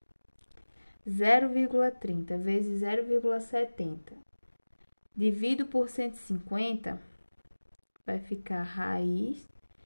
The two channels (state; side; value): inverted; both; correlation -1.00